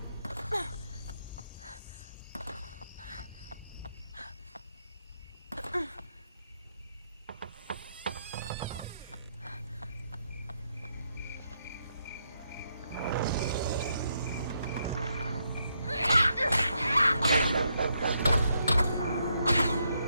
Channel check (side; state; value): both; inverted; correlation -0.78